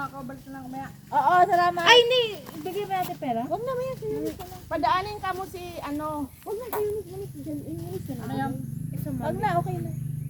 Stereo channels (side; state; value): both; identical; correlation 1.00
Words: ako. Balik na lang kumaya. Oo, salamat. Ay, hindi. Bigay ba natin pera? Huwag na, maya. Padaanin ka mo si ano. Huwag na, kayo nagmanis dyan. Inulis na. Ano yan? Huwag na, okay na.